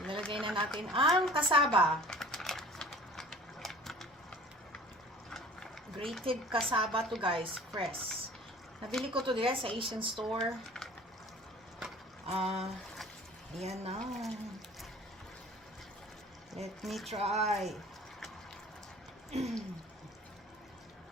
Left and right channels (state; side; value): normal; both; correlation 0.46